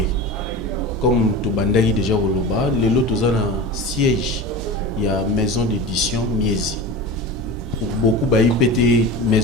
Comme tobandaki déjà koloba, lelo toza na siège ya maison d'édition Miezi. Beaucoup ba IPT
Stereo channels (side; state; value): both; normal; correlation 0.30